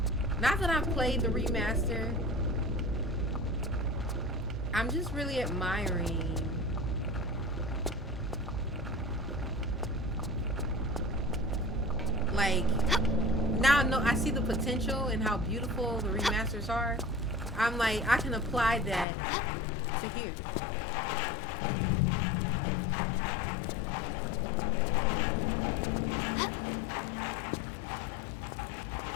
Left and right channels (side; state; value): right; drops out; at 19.1 s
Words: Not that I've played the remaster. I'm just really admiring. Like, now I see the potential and how beautiful the remasters are. I'm like, I can apply that to here.